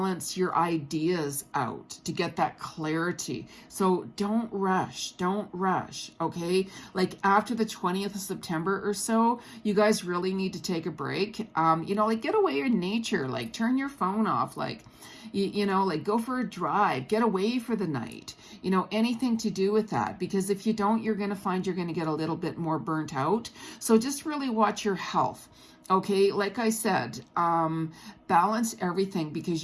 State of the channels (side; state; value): both; identical; correlation 1.00